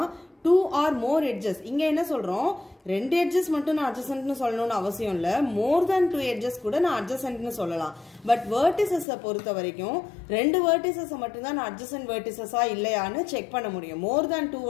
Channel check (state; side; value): drops out; right; at 9.1 s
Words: two or more edges. இங்க என்ன சொல்றோம்? ரெண்டு edges மட்டும் நான் adjacent னு சொல்லணும்னு அவசியம் இல்ல. more than two edges கூட நான் adjacent னு சொல்லலாம். பட் vertices பொறுத்த வரைக்கும் ரெண்டு vertices மட்டும் தான் நான் adjacent vertices இல்லையான்னு செக் பண்ண முடியும். more than two